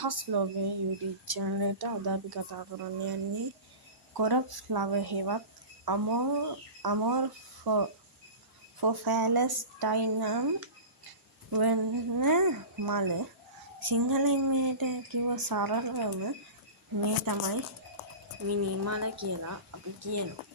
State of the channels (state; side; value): late; left; 1.0 ms